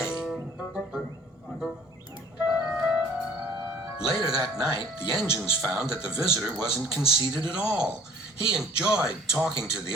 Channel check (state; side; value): normal; both; correlation 0.53